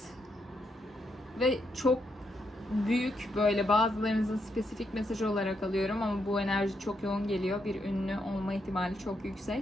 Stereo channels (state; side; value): normal; both; correlation 0.80